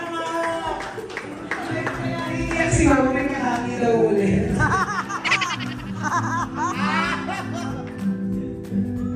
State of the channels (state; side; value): identical; both; correlation 1.00